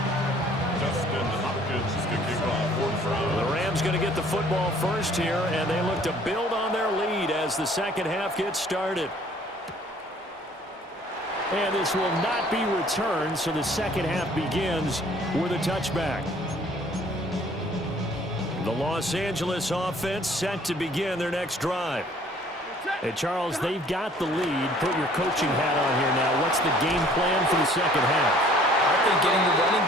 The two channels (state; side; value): normal; both; correlation 0.56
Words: The Rams going to get the football first here, and they look to build on their lead as the second half gets started. And this will not be returned, so the second half begins with a touchback. The Los Angeles offense set to begin their next drive. Hey, Charles, they've got the lead. Put your coaching hat on here now. What's the game plan for the second half? I think getting the running